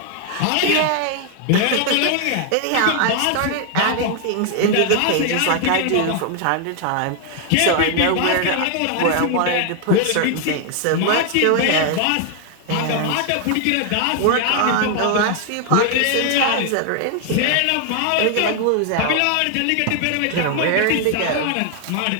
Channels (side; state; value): both; different; correlation 0.00